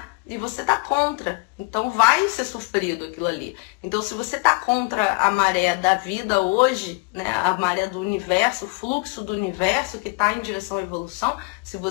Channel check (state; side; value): quieter; right; 29.8 dB